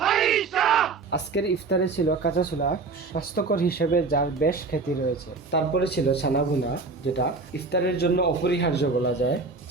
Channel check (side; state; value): left; quieter; 4.1 dB